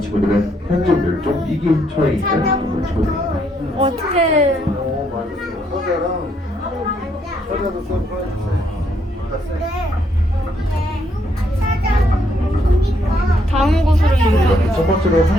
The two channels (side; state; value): both; normal; correlation 0.72